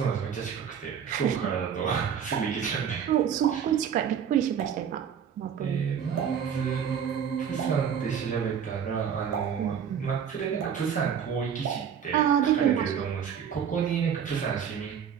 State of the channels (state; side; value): quieter; left; 7.9 dB